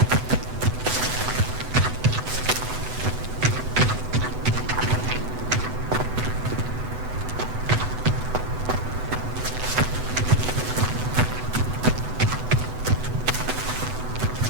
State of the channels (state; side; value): late; left; 8.0 ms